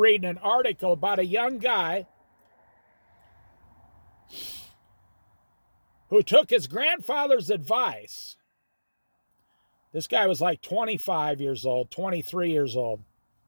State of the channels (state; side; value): inverted; both; correlation -1.00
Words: an article about a young guy who took his grandfather's advice. This guy was like 25 years old, 23 years old.